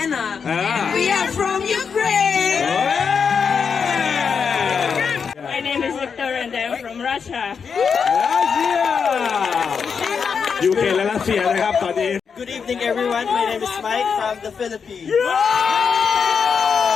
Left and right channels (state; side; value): quieter; right; 6.2 dB